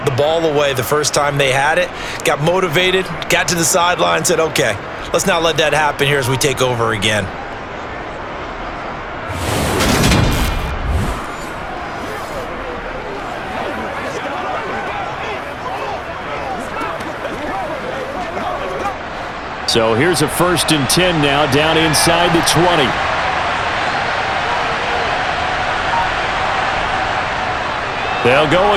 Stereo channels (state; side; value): identical; both; correlation 1.00